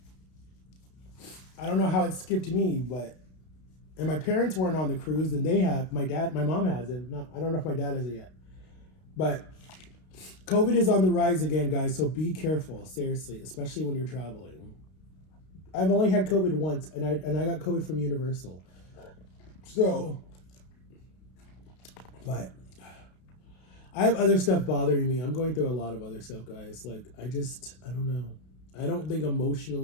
I don't know how it skipped me, and my parents weren't on the cruise, and my mom has it. I don't know if my dad has it yet. But COVID is on the rise again, guys, so be careful, seriously, especially when you're traveling. I've only had COVID once, and I got COVID from Universal. So, but I have other stuff bothering me. I'm going through a lot of other stuff, guys. Like, I don't know. I don't think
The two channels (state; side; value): late; right; 32 ms